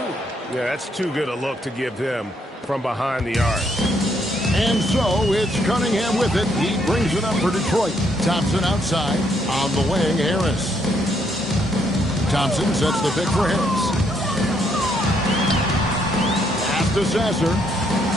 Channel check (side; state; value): both; normal; correlation 0.72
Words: Yeah, that's too good a look to give him from behind the arc. And so it's Cunningham with it. He brings it up for Detroit. Thompson outside. On the wing, Harris. Thompson sets the pick for Harris. Pass to Sasser.